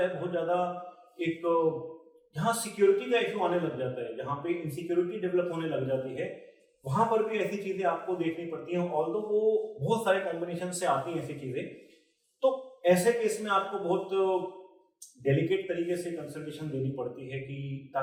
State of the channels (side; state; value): both; identical; correlation 1.00